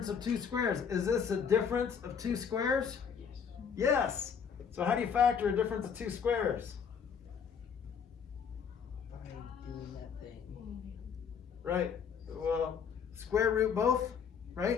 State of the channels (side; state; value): right; quieter; 6.9 dB